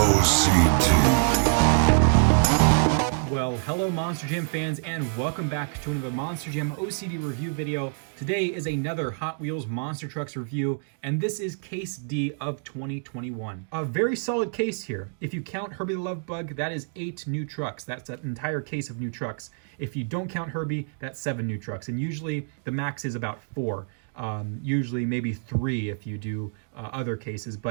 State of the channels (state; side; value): silent; left; 61 dB below the other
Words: Well, hello Monster Jam fans, and welcome back to another Monster Jam OCD review video. Today is another Hot Wheels Monster Trucks review, and this is Case D of 2021. A very solid case here. If you count Herbie the Love Bug, that is 8 new trucks. That's an entire case of new trucks. If you don't count Herbie, that's 7 new trucks, and usually the max is about 4. Usually maybe 3 if you do other cases,